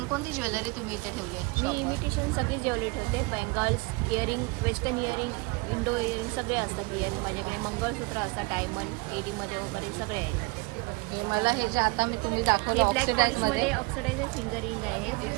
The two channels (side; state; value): left; quieter; 26.5 dB